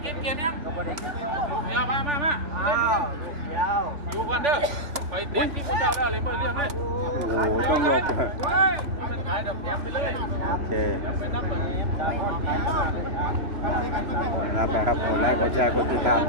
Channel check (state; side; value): late; left; 3.5 ms